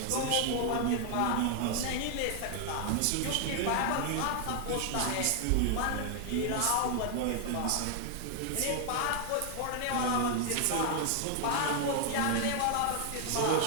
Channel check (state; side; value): different; both; correlation 0.00